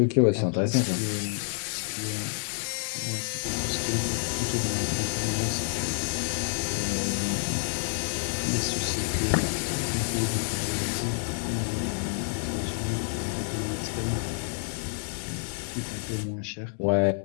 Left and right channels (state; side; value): silent; right; digital silence